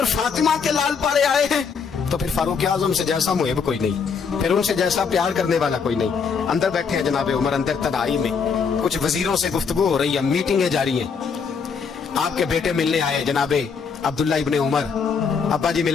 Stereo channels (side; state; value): right; quieter; 5.9 dB